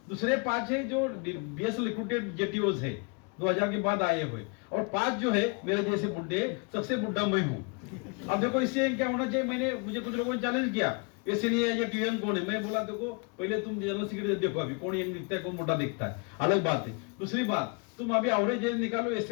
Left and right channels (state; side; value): quieter; right; 34.2 dB